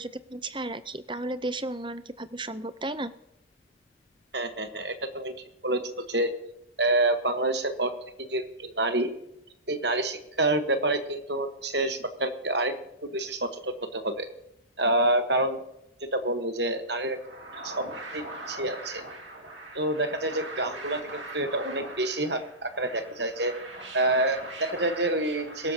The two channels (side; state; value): both; normal; correlation -0.18